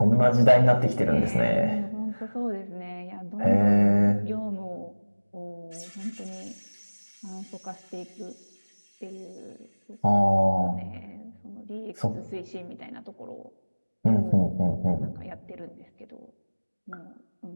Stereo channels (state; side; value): inverted; both; correlation -1.00